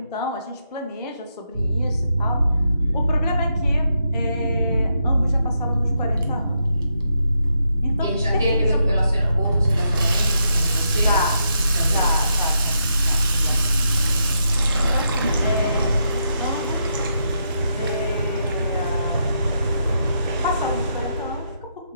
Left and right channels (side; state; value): both; inverted; correlation -0.81